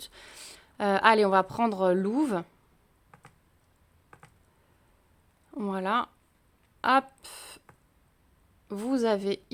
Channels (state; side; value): identical; both; correlation 1.00